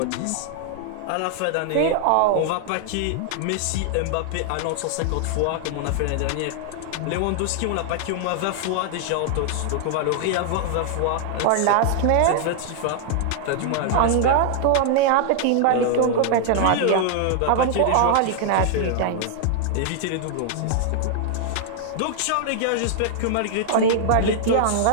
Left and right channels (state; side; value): different; both; correlation 0.00